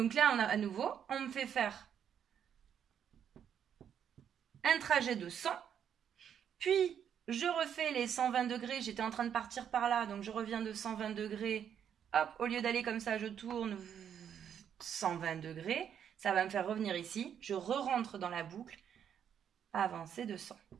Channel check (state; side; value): quieter; left; 8.7 dB